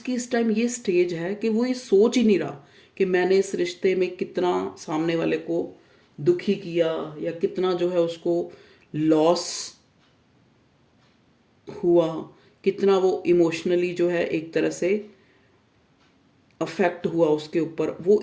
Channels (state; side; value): identical; both; correlation 1.00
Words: इस टाइम ये स्टेज है कि वो ये सोच ही नहीं रहा कि मैंने इस रिश्ते में कितना सामने वाले को दुखी किया या कितना जो है उसको लॉस हुआ, कितना वो इमोशनली जो है एक तरह से अफेक्ट हुआ उसके ऊपर। वो